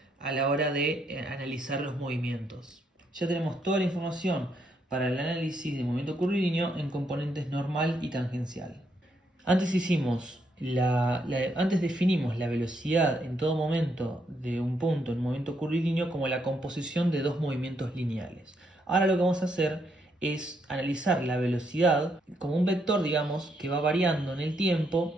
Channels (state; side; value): normal; both; correlation 0.76